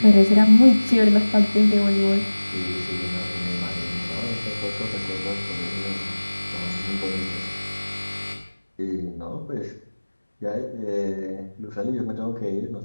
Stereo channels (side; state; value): both; inverted; correlation -1.00